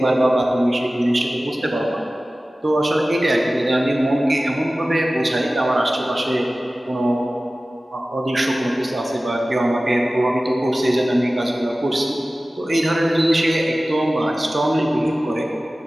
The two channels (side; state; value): both; normal; correlation 0.97